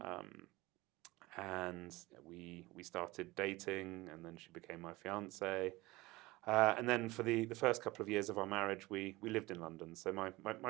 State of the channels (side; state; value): left; quieter; 20.7 dB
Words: And we started dating, and then she became my fiance. And then for the first couple of years of our marriage, we lived in London. So my